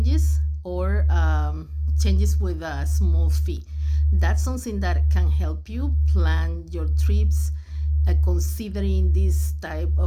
or changes with a small fee. That's something that can help you plan your trips considering this type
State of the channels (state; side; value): identical; both; correlation 1.00